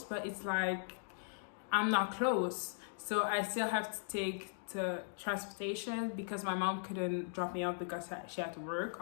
but it's like I'm not close. So I still have to take the transportation because my mom couldn't drop me off because she had to work,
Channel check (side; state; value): right; silent; digital silence